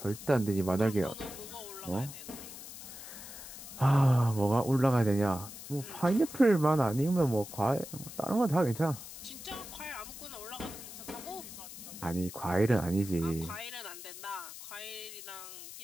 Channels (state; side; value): noise; left; hiss, 13 dB below the sound